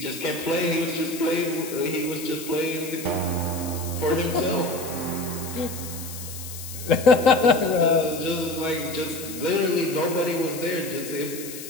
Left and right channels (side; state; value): left; noise; hiss, 11 dB below the sound